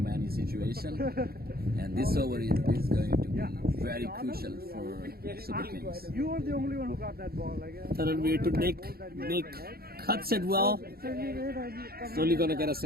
any situation, and this over is going to be very crucial for Super Kings. You were the only one who got that ball. Taranveer to Nick cuts it well. It's only gonna get a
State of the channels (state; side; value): late; left; 0.45 ms